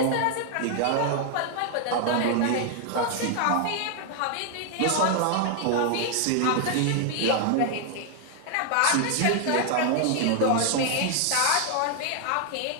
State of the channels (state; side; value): different; both; correlation 0.00